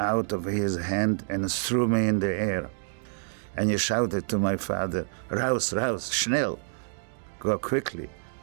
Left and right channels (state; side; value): silent; left; digital silence